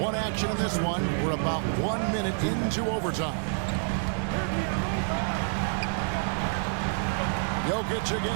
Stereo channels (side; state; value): left; silent; 59 dB below the other